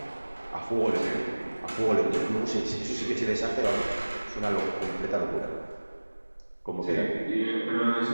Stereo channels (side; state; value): both; inverted; correlation -1.00